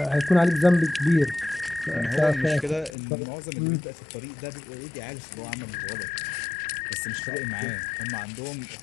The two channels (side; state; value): right; drops out; at 2.9 s